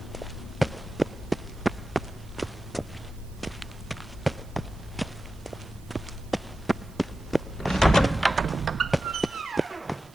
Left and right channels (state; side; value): noise; right; hiss, 27 dB below the sound